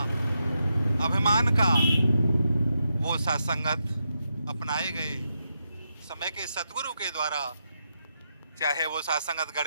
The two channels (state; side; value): inverted; both; correlation -0.84